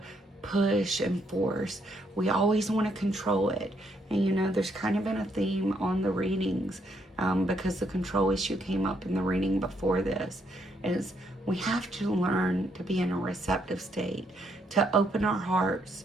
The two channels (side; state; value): both; normal; correlation 0.73